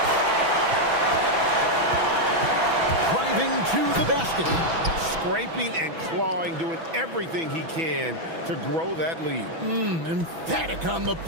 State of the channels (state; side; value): late; left; 6.1 ms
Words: Driving to the basket. Scraping and clawing, doing everything he can to grow that lead. Emphatic on the